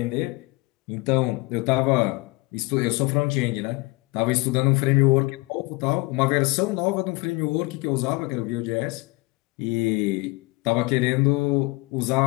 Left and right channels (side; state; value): right; quieter; 25.0 dB